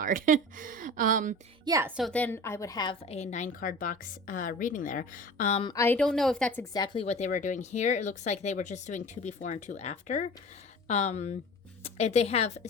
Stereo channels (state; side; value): normal; both; correlation 0.38